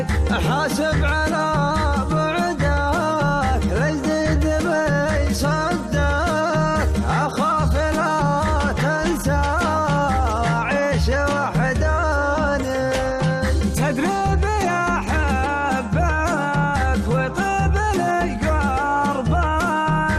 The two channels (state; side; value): identical; both; correlation 1.00